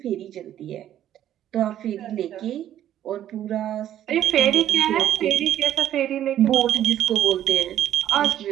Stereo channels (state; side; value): quieter; left; 11.5 dB